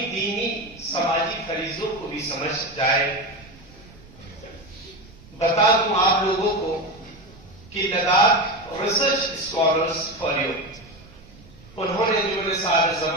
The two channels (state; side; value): noise; right; rumble, 22 dB below the sound